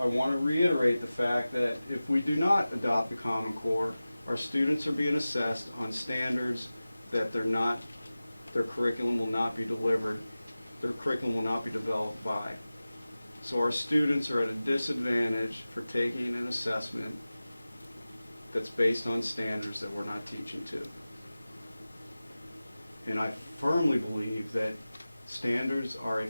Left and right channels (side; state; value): both; inverted; correlation -0.96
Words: reiterate the fact that if we do not adopt the Common Core, our students are being assessed on standards that their curriculum will not be delivered, their curriculum will not be developed by. So our students are at a disadvantage for taking an assessment that's based on standards that we're not teaching to. And I firmly believe that standards are a